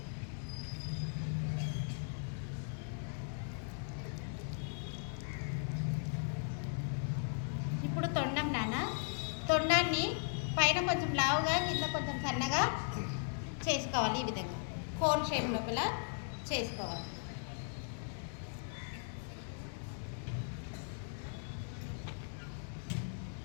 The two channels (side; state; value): right; silent; digital silence